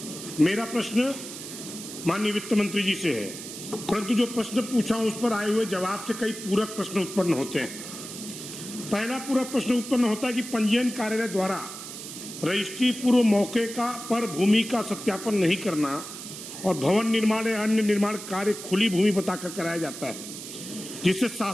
मेरा प्रश्न माननीय वित्त मंत्री जी से है, परंतु जो प्रश्न पूछा उस पर आए हुए जवाब से कई पूरक प्रश्न उत्पन्न होते हैं। पहला पूरक प्रश्न उत्पन्न होता है कि पंजीयन कार्यालय द्वारा रजिस्ट्री पूर्व मौके पर भूमि का सत्यापन नहीं करना और भवन निर्माण या अन्य निर्माण कार्य खुली भूमि बताकर कराया जाता है, जिससे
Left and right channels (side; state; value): right; noise; hiss, 11 dB below the sound